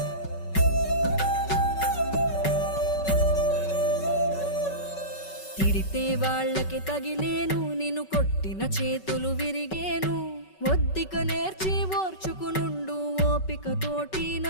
తిడితే వాళ్ళకి తగిలేను, నిన్ను కొట్టిన చేతులు విరిగేను. ఒద్దిక నేర్చి ఓర్చుకునుండు ఓపికతోటి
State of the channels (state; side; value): late; right; 5.3 ms